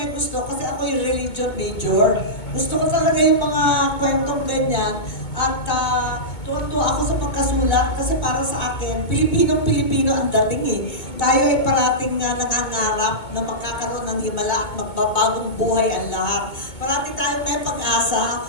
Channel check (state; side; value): late; right; 2.2 ms